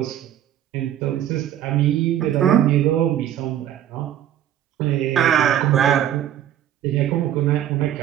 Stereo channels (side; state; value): left; quieter; 11.2 dB